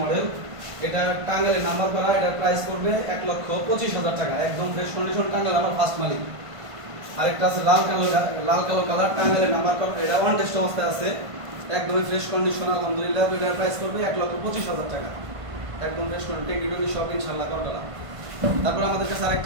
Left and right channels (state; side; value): late; left; 1.5 ms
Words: মডেল। এটা টাঙ্গাইলে নাম্বার করা, এটার প্রাইস পড়বে 1,25,000 টাকা, একদম ফ্রেশ কন্ডিশন, টাঙ্গাইল আমার ফার্স্ট মালিক। আরেকটা আছে লাল কালো কালার, টাঙ্গাইলে নাম্বার করা, এটা অন টেস্ট অবস্থায় আছে, একদমই ফ্রেশ কন্ডিশন আলহামদুলিল্লাহ। এটার প্রাইস পড়বে 1,25,000 টাকা, একদম ফ্রেশ কন্ডিশন, টেকনিক্যালি সব ইনশাআল্লাহ করা। তারপর আমাদের কাছে